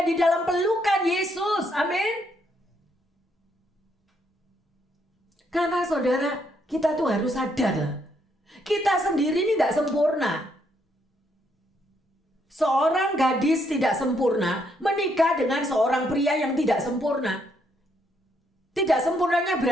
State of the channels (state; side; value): normal; both; correlation 0.74